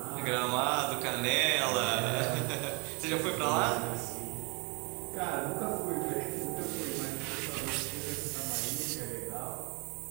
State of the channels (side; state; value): left; quieter; 31.8 dB